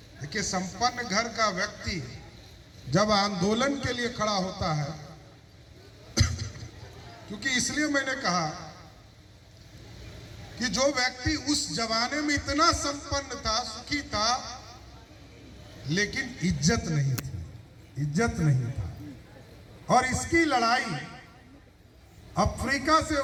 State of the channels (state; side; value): identical; both; correlation 1.00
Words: देखिए संपन्न घर का व्यक्ति जब आंदोलन के लिए खड़ा होता है, क्योंकि इसलिए मैंने कहा कि जो व्यक्ति उस जमाने में इतना संपन्न था, सुखी था, लेकिन इज्जत नहीं थी, इज्जत नहीं था। और इसकी लड़ाई अफ्रीका से